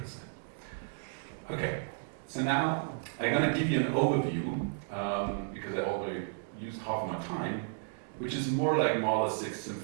Okay, so now I'm going to give you an overview because I already used half of my time, which is more like Mahler's Sixth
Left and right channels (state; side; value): silent; left; digital silence